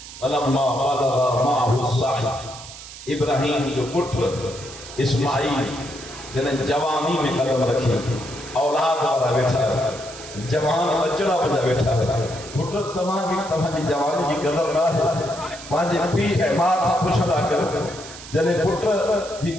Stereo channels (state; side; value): noise; right; hiss, 15 dB below the sound